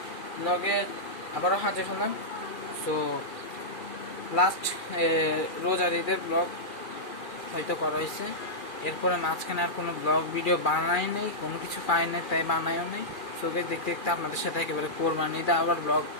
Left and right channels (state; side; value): late; right; 2.4 ms